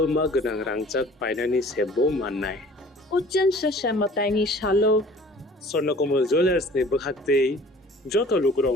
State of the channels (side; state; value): both; normal; correlation 0.49